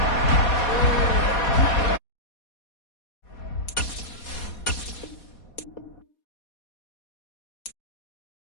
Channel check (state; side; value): late; right; 4.2 ms